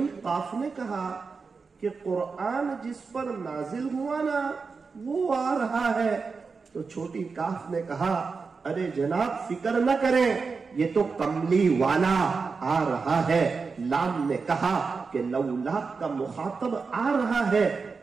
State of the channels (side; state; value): left; quieter; 4.8 dB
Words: قاف نے کہا کہ قرآن جس پر نازل ہوا نا وہ آ رہا ہے. تو چھوٹی کاف نے کہا ارے جناب فکر نہ کریں یہ تو کملی والا آ رہا ہے. لام نے کہا کہ لولا کا مخاطب آ رہا ہے.